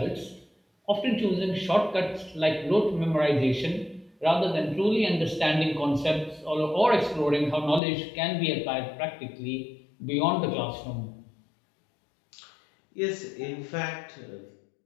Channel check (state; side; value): drops out; right; at 7.8 s